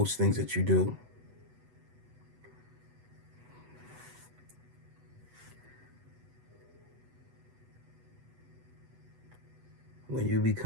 things that you do. When you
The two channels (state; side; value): late; left; 8.1 ms